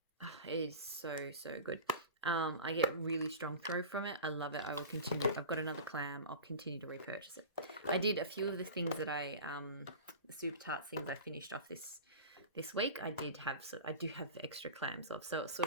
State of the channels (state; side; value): inverted; both; correlation -0.33